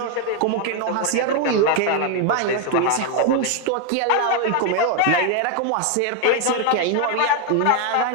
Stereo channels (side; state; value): both; different; correlation 0.01